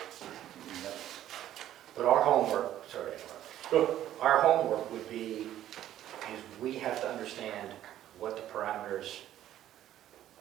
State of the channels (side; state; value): left; quieter; 12.3 dB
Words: But our homework, sorry, Go. our homework would be, is we have to understand what the parameters